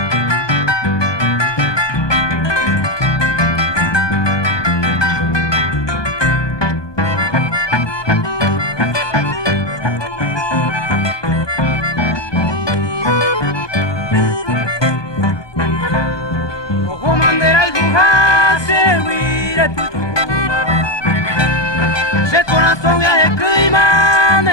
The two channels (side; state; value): right; late; 1.2 ms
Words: Se corazón viaje clima,